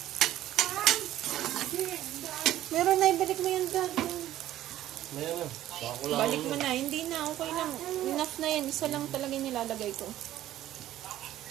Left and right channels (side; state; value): left; quieter; 13.4 dB